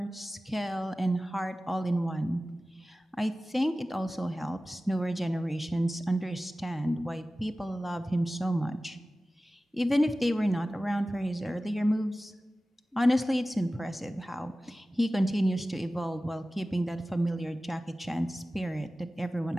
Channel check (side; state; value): both; normal; correlation 0.96